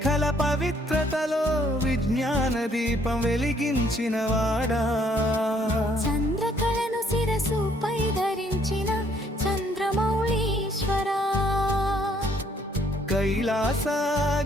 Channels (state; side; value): normal; both; correlation 0.66